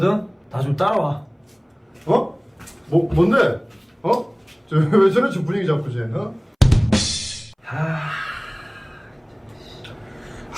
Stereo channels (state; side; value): identical; both; correlation 1.00